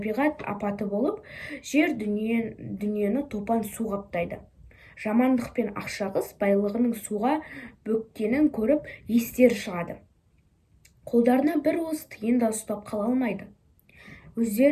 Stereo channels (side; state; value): both; identical; correlation 1.00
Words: апаты болып, жер дүниені топан су қаптайды. Жамандық пен ақшағыз байлығының суға бөккенін көріп естері шығады. Қолдарына бір уыс тиын да ұстап қала алмайды.